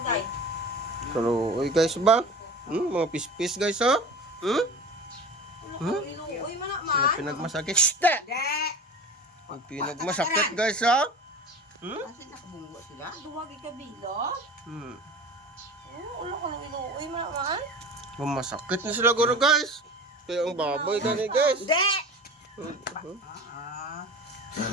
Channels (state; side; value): normal; both; correlation 0.36